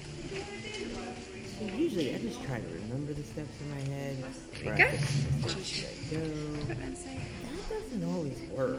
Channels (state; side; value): identical; both; correlation 1.00